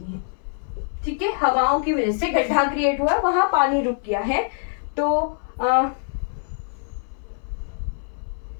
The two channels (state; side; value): silent; right; 59 dB below the other